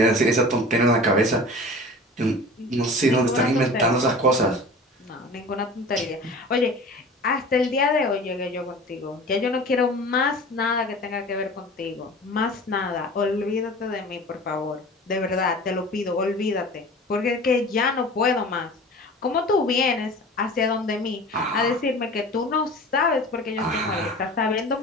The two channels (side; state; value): both; normal; correlation 0.39